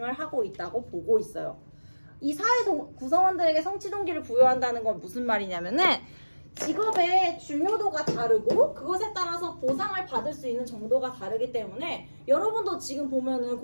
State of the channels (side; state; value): both; inverted; correlation -1.00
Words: 하고 있다고 보고 있어요. 이 사회 구성원들에게 성취 동기를 부여한다는 건 무슨 말이냐면은 직업의 중요도가 다르고 그것에 따라서 보상을 받을 수 있는 정도가 다르기 때문에 여러분도 지금 보면은